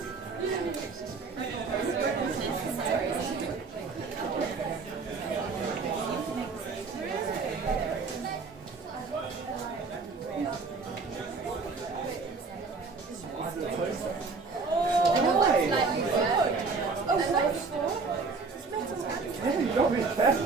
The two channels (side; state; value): left; quieter; 4.4 dB